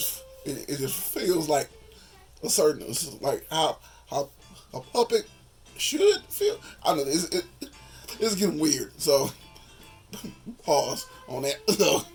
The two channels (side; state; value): both; identical; correlation 1.00